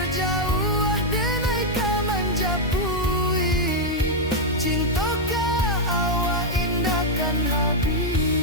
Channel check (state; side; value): noise; left; hum, 12 dB below the sound